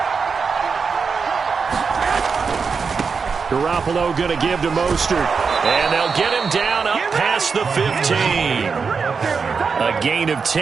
Garoppolo going to give to Mostert. And they'll get him down up past the 15. A gain of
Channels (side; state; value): left; quieter; 5.4 dB